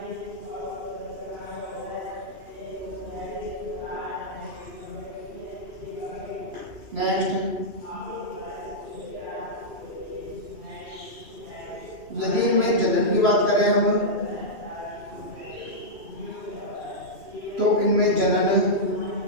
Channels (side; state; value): left; late; 2.8 ms